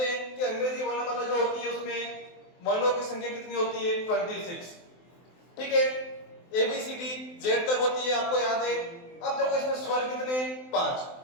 हैं कि अंग्रेजी वर्णमाला जो होती है उसमें वर्णों की संख्या कितनी होती है? 26। ठीक है, एबीसीडी जेड तक होती है, आपको याद है। अब देखो, इसमें स्वर कितने? 5।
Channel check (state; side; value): late; right; 23 ms